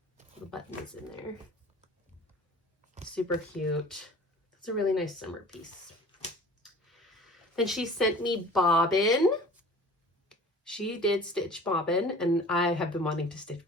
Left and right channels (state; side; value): normal; both; correlation 0.44